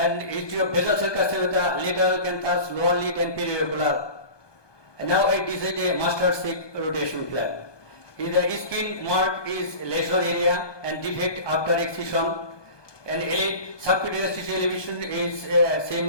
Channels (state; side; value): late; right; 1.2 ms